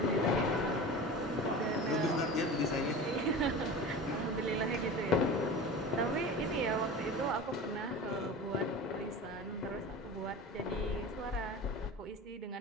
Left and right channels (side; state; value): both; normal; correlation 0.33